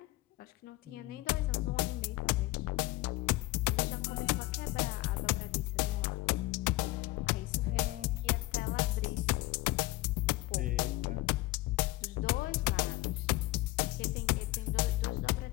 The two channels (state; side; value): quieter; right; 18.5 dB